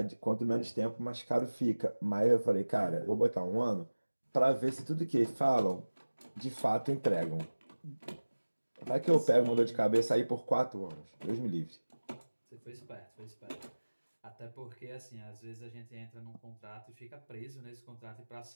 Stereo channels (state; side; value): inverted; both; correlation -1.00